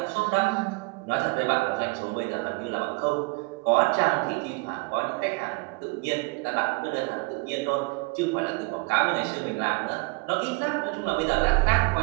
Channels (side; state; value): left; quieter; 27.1 dB